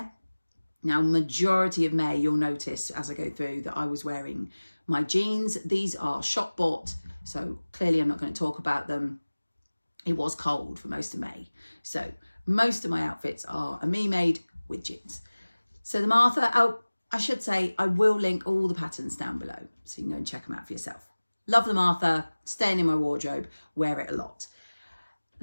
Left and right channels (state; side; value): inverted; both; correlation -1.00